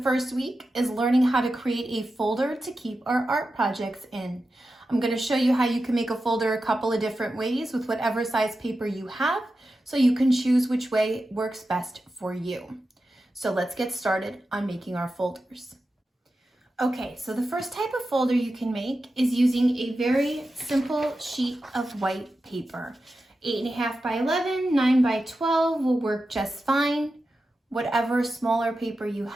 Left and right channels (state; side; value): normal; both; correlation 0.91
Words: week is learning how to create a folder to keep our art projects in. I'm going to show you how you can make a folder a couple of different ways with whatever size paper you have, so you can choose which way works best for you. So let's get started on making our folders. Okay, so the first type of folder you can make is using a very simple sheet of white paper. 8.5 by 11, 9 by 12 will work just fine. Whatever smaller paper you